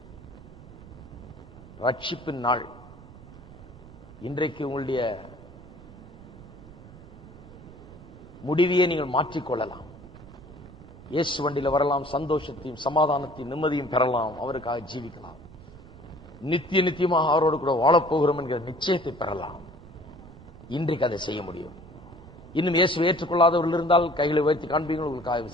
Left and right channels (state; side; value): noise; right; rumble, 19 dB below the sound